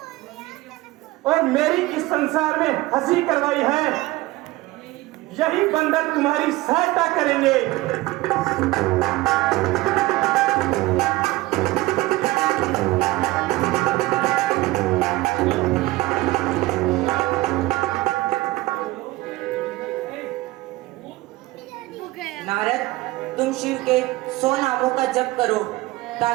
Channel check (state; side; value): quieter; left; 19.3 dB